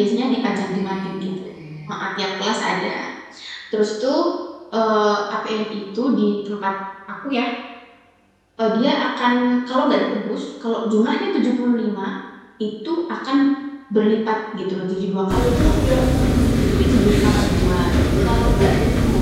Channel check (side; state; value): both; identical; correlation 1.00